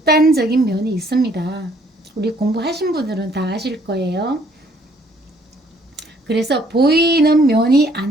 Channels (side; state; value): both; normal; correlation 0.63